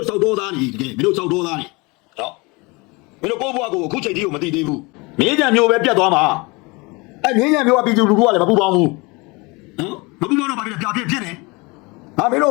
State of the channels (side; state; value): right; quieter; 26.3 dB